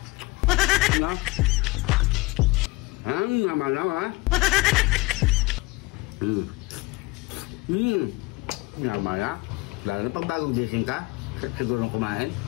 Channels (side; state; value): right; quieter; 23.3 dB